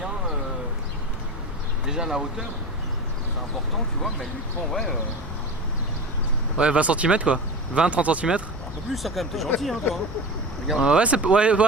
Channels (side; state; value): both; normal; correlation 0.28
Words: déjà la hauteur, c'est important tu vois, mais elle lui prend Ouais, 20 cm quoi. 20-30 cm. un peu plus ça quand même, t'es gentil hein toi. Regarde. Ouais, c'est. Ouais,